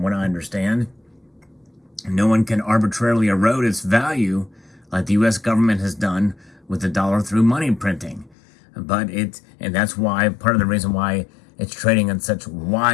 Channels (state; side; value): drops out; right; at 8.3 s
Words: what I understand. No one can arbitrarily erode its value like the U.S. government has done with the dollar through money printing. And that's why, part of the reason why it's trading in such